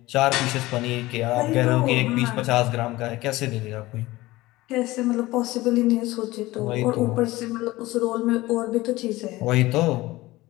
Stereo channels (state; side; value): quieter; right; 18.8 dB